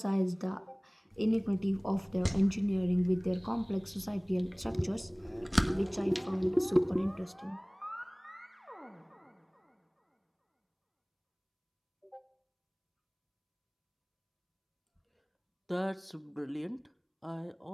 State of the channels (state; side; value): identical; both; correlation 1.00